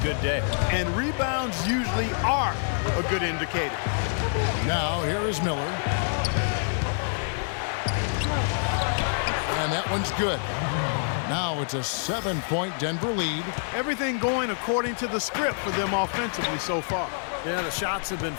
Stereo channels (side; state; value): right; silent; 60 dB below the other